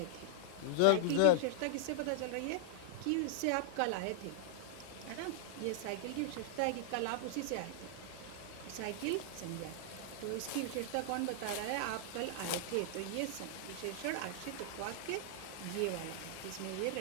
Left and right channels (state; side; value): different; both; correlation -0.01